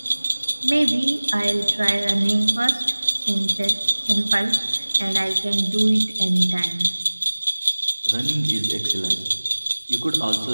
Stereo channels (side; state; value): both; inverted; correlation -1.00